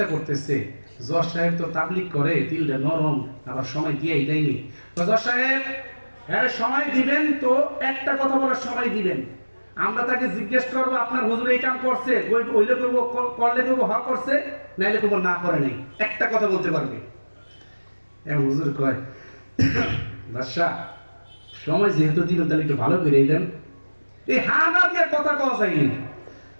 করতেছে, জজ সাহেব তো তাবলিগ করে, দিলটা নরম, আবার সময় দিয়েই দেয়নি। জজ সাহেব হ্যাঁ সময় দিবেন তো, একটা কথা বলার সময় দিবেন। আমরা তাকে জিজ্ঞেস করবো আপনার হুজুর এই কাম করছে, হইলে করবো, করলে করবো হ করছে, নাইলে করবো না করে নাই, একটা কথা বলতে পারবে। এখন হুজুর কয় বাদশা সময় যেহেতু দিবেন তাহলে একটু ভালো করে দেন। এই হা না দিয়ে কথা কওয়া যায়নি।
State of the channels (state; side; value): inverted; both; correlation -1.00